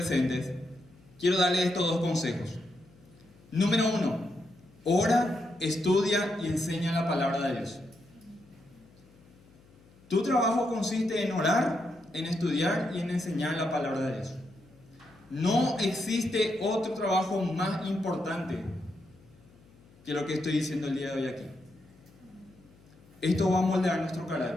quiero darles estos dos consejos. Número 1, ora, estudia y enseña la palabra de Dios. Tu trabajo consiste en orar, en estudiar y en enseñar la palabra de Dios. No existe otro trabajo más importante que lo que estoy diciendo el día de hoy aquí. Esto va a moldear nuestro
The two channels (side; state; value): left; noise; hum, 27 dB below the sound